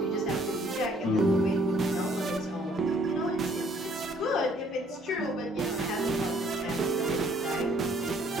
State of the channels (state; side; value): normal; both; correlation 0.61